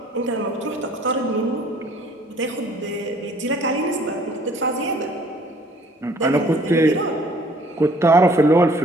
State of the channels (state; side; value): normal; both; correlation 0.56